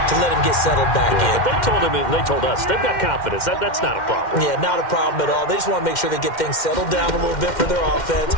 to let him get settled back in. But they told us they've got confidence. That's not a problem. Yeah, not a problem at all. They just want to make sure they get things settled down a little bit for their offense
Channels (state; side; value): late; right; 2.1 ms